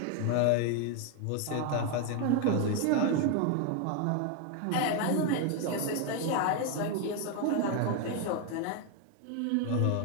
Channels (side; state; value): both; different; correlation 0.01